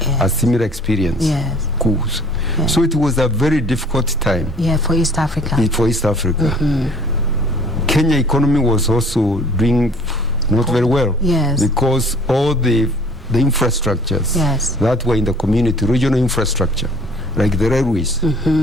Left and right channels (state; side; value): normal; both; correlation 0.53